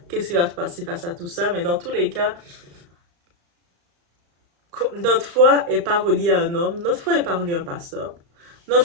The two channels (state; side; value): late; left; 35 ms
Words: qu'est-ce qui va se passer face à tout ça. Mais dans tous les cas, notre foi n'est pas reliée à un homme. Notre foi n'est pas reliée à un pasteur.